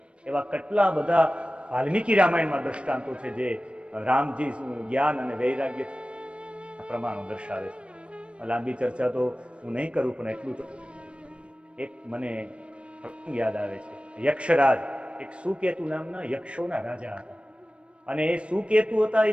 એવા કેટલા બધા વાલ્મીકી રામાયણમાં દ્રષ્ટાંતો છે જે રામજી જ્ઞાન અને વૈરાગ્ય પ્રમાણો દર્શાવે છે. લાંબી ચર્ચા તો હું નહીં કરું, પણ એટલું તો એક મને યાદ આવે છે. યક્ષરાજ, એક સુકેતુ નામના યક્ષોના રાજા હતા. અને એ સુકેતુ હતા, એ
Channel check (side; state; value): left; late; 0.059 ms